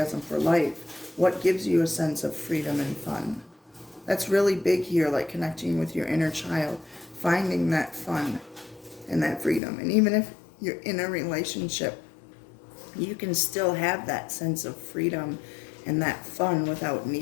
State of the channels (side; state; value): right; drops out; at 9.6 s